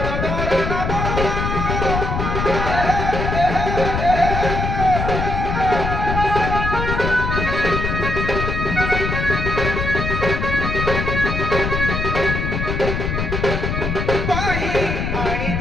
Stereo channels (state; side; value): noise; left; rumble, 2 dB below the sound